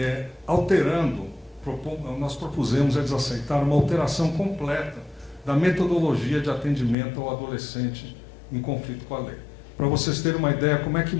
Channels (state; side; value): drops out; right; at 7.0 s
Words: alterando, nós propusemos, eles aceitaram, uma alteração completa da metodologia de atendimento ao adolescente em conflito com a lei. Para vocês terem uma ideia como é que